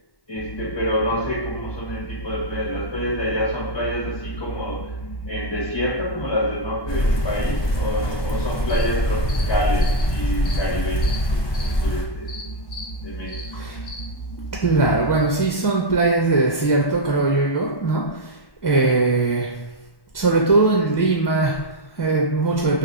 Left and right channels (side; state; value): right; late; 1.1 ms